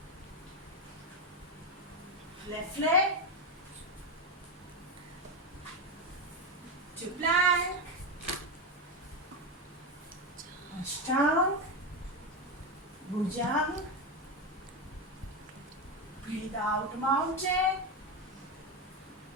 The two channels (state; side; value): normal; both; correlation 0.13